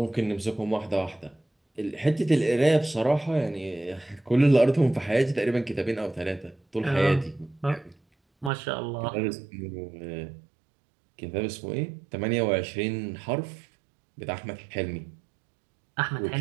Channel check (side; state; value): left; drops out; at 8.5 s